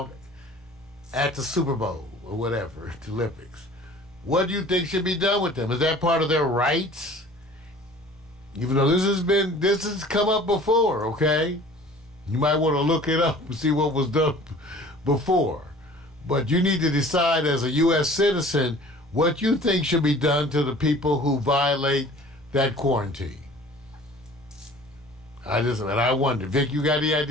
at the Super Bowl or whatever, the Olympics. What do you think should be done with them? Is that part of their rights? Even though this has come up before, okay? You might want to look it up and see what was done before. But you need to decide as a U.S. citizen what you think should be done to the people who violate that quarantine. I wonder, Vic, you got any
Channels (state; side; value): normal; both; correlation 0.47